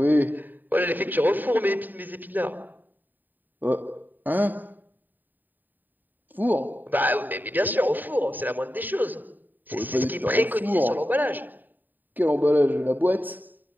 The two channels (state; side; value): late; left; 0.089 ms